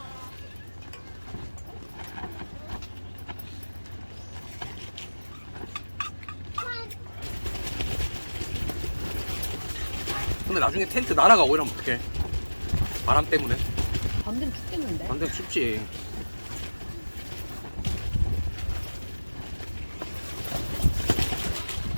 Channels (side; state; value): both; inverted; correlation -1.00